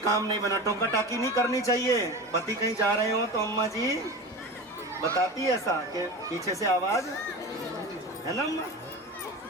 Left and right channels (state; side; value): normal; both; correlation 0.30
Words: नहीं बना, टोका टाकी नहीं करनी चाहिए। पति कहीं जा रहे हो तो अम्मा जी बताती है ऐसा कि पीछे से आवाज है ना अम्मा,